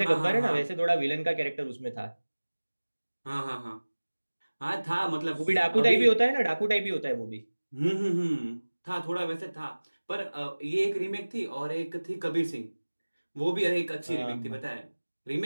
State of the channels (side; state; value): both; inverted; correlation -1.00